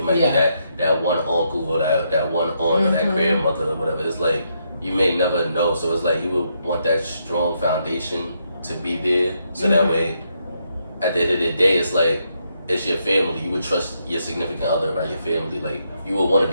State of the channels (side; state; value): both; inverted; correlation -0.78